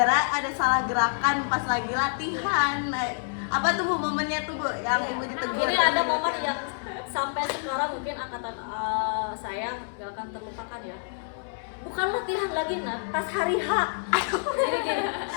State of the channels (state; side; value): silent; right; 60 dB below the other